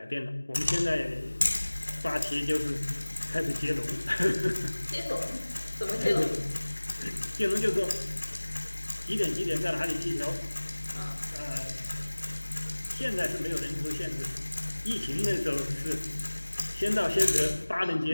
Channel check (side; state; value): both; inverted; correlation -1.00